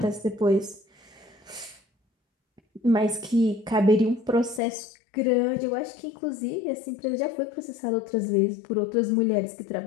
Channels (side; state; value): right; drops out; at 4.6 s